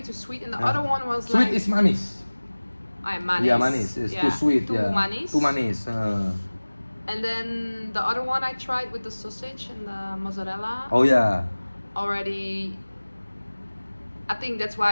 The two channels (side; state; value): both; inverted; correlation -1.00